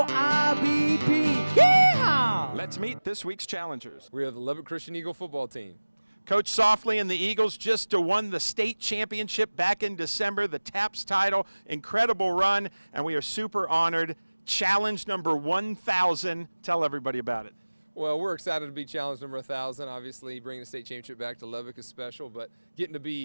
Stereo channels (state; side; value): inverted; both; correlation -1.00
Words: IBP. Yeehaw! Let's meet this week's challengers. We are the Lubbock Christian Eagle football team. Coach Softly and the Eagles just won the state championship back in December, the TAPS title. Incredible run, and we are super honored. Challenge number 1,000. Tell everybody about it. Well, we're excited to be challenge number 1,000. Obviously, bringing the state championship back to Lubbock is special, but getting to